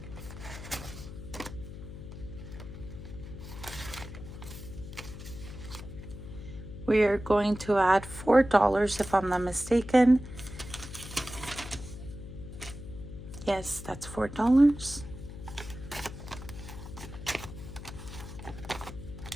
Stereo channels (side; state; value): left; noise; hum, 11 dB below the sound